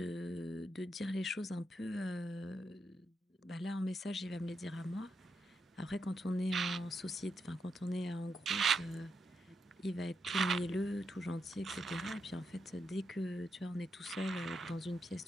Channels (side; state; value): both; normal; correlation 0.83